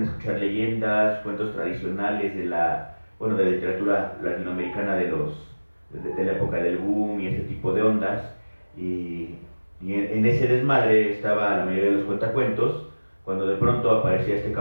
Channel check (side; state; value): both; inverted; correlation -1.00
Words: escuchar leyendas, cuentos tradicionales de la literatura latinoamericana de la época del boom y ese tipo de ondas. Y en ese desmadre estaba la mayoría de los cuentacuentos, cuando de pronto aparecía este